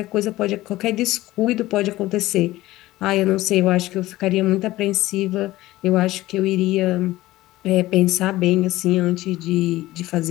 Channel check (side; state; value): right; quieter; 17.0 dB